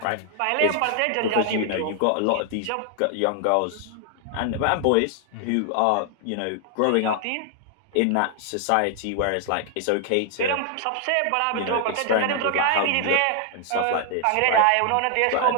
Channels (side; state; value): both; different; correlation 0.00